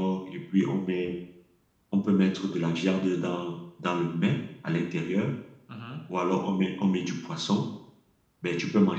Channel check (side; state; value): both; identical; correlation 1.00